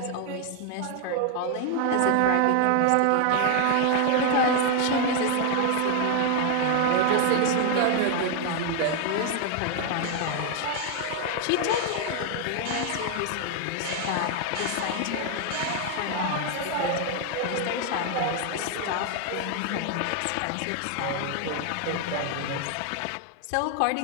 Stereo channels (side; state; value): both; different; correlation 0.00